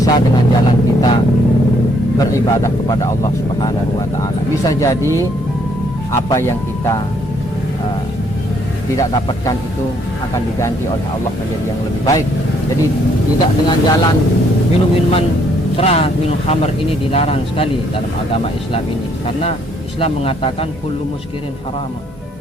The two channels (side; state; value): both; normal; correlation 0.68